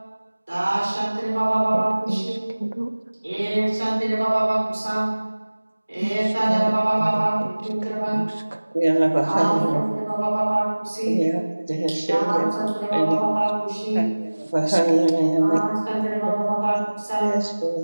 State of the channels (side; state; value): both; inverted; correlation -1.00